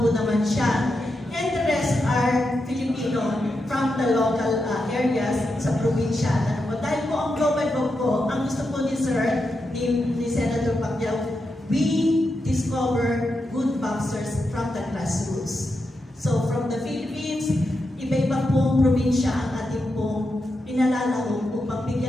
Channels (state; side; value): normal; both; correlation 0.86